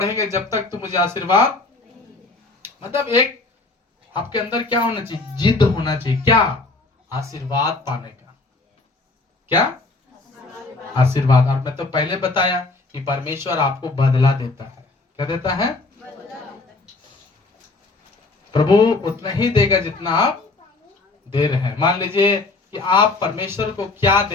जब तक तू मुझे आशीर्वाद, मतलब एक आपके अंदर क्या होना चाहिए, जिद होना चाहिए, क्या, आशीर्वाद पाने का, क्या, आशीर्वाद। और मैं तो पहले बताया कि परमेश्वर आपको बदला देता है, क्या देता है, प्रभु उतना ही देगा जितना आप दे रहे हैं। मान लीजिए कि आप परमेश्वर को क्या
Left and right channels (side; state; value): right; quieter; 3.5 dB